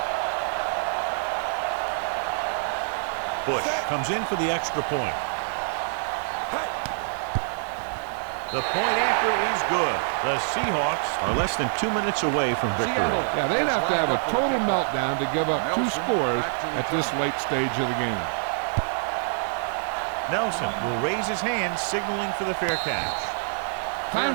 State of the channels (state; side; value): silent; left; 61 dB below the other